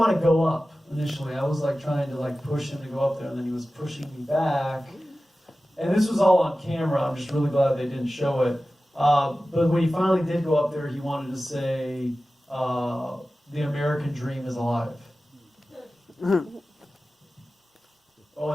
to go up initially. I was like trying to like push him to go up there, and then he was pushing me back. And this was all on camera. I'm just really glad they didn't show it. But when he finally did go up there, he wanted to say, "The American dream is alive." Oh,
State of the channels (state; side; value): normal; both; correlation 0.95